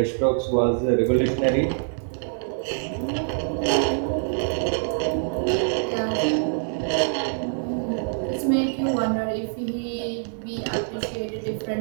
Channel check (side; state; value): left; silent; 62 dB below the other